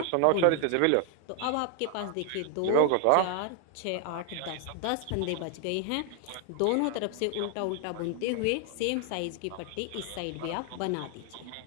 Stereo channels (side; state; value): both; different; correlation 0.00